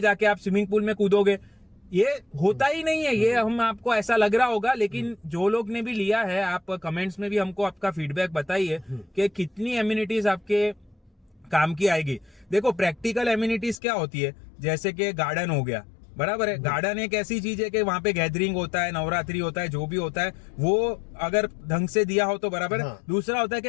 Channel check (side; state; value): right; drops out; at 13.8 s